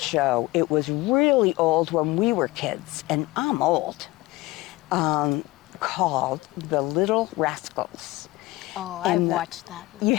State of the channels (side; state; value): right; quieter; 19.6 dB